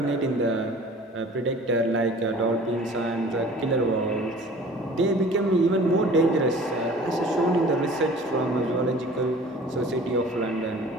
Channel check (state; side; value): normal; both; correlation 0.46